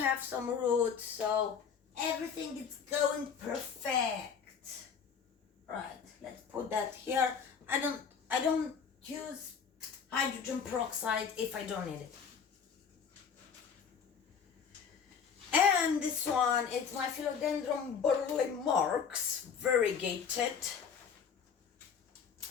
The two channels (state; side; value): quieter; right; 6.7 dB